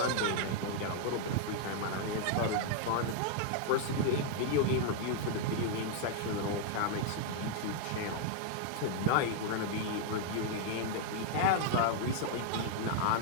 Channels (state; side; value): different; both; correlation 0.00